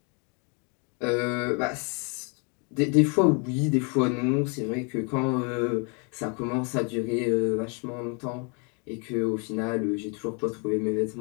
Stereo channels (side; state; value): right; quieter; 35.7 dB